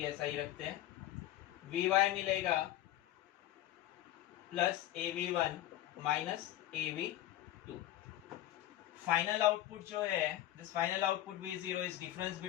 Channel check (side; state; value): right; quieter; 14.1 dB